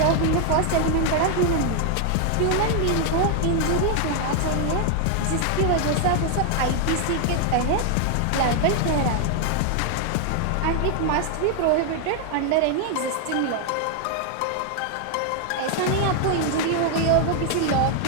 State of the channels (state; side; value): different; both; correlation 0.00